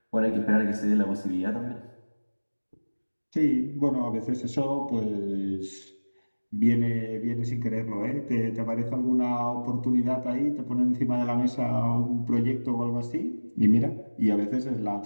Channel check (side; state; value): both; inverted; correlation -1.00